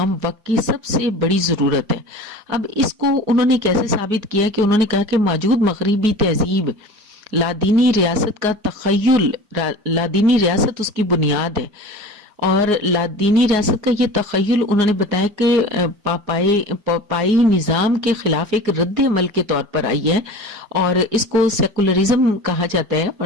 وقت کی سب سے بڑی ضرورت ہے. اب اس کو انہوں نے کیسے ثابت کیا کہ انہوں نے کہا کہ موجود مغربی تہذیب لادینی ریاست کا تخیل, لادینی ریاست اس کی بنیاد ہے, اور لادینی ریاست کا یہ تخیل انہوں نے بتایا کہ پاپائی نظام کے خلاف ایک رد عمل کے طور پر آئی ہے, اور اس کو سیکولرزم کہا جاتا ہے.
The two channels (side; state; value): left; late; 4.8 ms